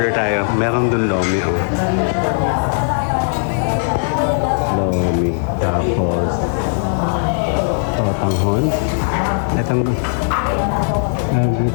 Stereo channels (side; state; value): right; silent; 61 dB below the other